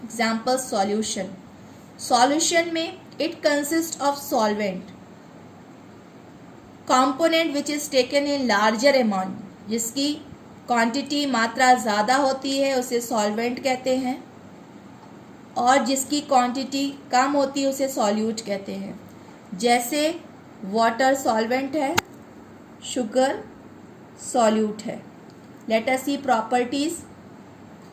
Example, solution. Solution में it consists of solvent, component which is taken in larger amount. जिसकी क्वांटिटी मात्रा ज़्यादा होती है उसे सॉल्वेंट कहते हैं और जिसकी क्वांटिटी कम होती है उसे सॉल्यूट कहते हैं. जैसे वाटर सॉल्वेंट है, शुगर सॉल्यूट है. Let us see properties.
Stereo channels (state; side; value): identical; both; correlation 1.00